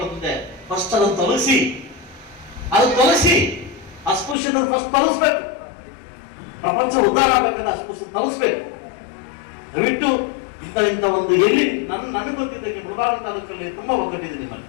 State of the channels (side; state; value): right; drops out; at 4.4 s